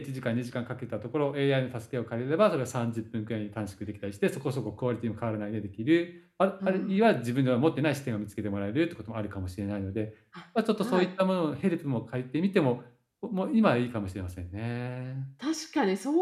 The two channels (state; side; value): identical; both; correlation 1.00